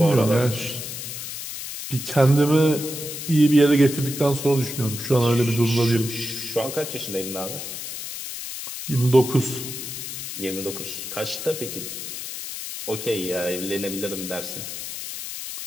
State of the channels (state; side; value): noise; left; hiss, 8 dB below the sound